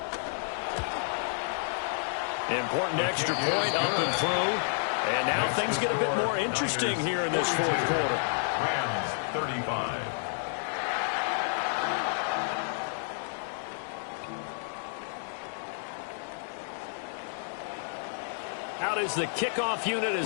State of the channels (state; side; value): silent; right; digital silence